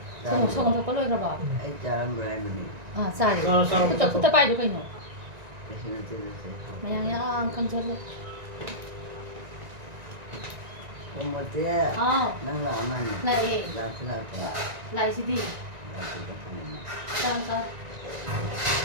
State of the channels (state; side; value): late; left; 1.9 ms